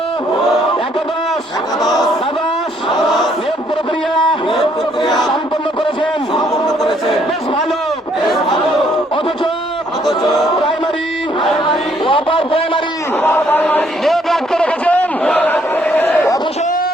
একাদশ দ্বাদশ নিয়োগ প্রক্রিয়া সম্পন্ন করেছেন। বেশ ভালো। অথচ প্রাইমারি ও আপার প্রাইমারি নিয়োগ রাখতে রেখেছেন। অথচ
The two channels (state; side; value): normal; both; correlation 0.67